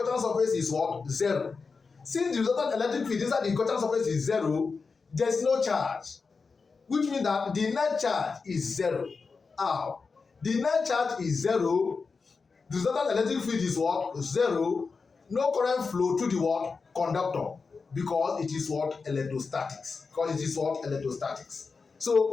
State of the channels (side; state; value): right; quieter; 4.7 dB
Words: surface is what? 0. Since the resultant electric field inside the Gaussian surface is 0, there is no charge. Which means that the net charge is 0. How? The net charge is 0. The resultant electric field is what? 0. No current flow to the what? Conductor. Because it is what? Electrostatics.